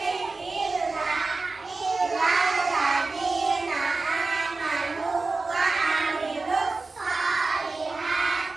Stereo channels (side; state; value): left; quieter; 3.7 dB